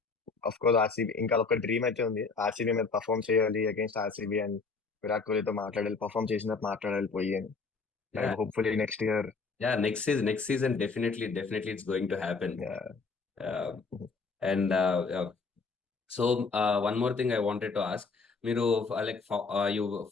of course RCB ఇంకా ఒక డ్రీమ్ అయితే ఉంది, ఆర్సీబీ మీద పర్ఫామ్ చేయాలి అగేన్స్ట్ ఆర్సీబీ అండ్ విరాట్ కోహ్లీతో మాట్లాడాలి, పర్ఫామ్ చేసినట్టు మాట్లాడాలి పోయి అని. Yeah, hopefully next year. yeah. Next season, definitely it's going to happen. Uh, and so one more thing I wanted to ask. మీరు లైక్ యూ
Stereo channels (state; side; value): quieter; right; 4.5 dB